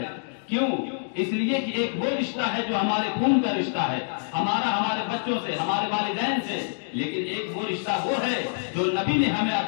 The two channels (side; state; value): right; silent; digital silence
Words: کیوں؟ اس لیے کہ ایک وہ رشتہ ہے جو ہمارے خون کا رشتہ ہے، ہمارے بچوں سے، ہمارے والدین سے، لیکن ایک وہ رشتہ وہ ہے جو نبی نے ہمیں